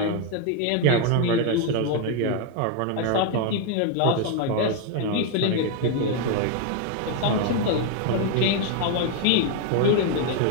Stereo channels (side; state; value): both; different; correlation 0.01